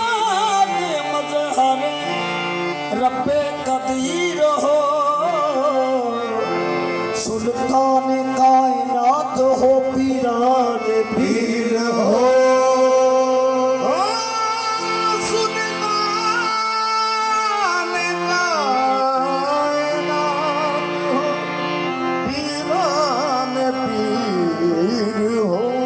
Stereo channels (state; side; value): identical; both; correlation 1.00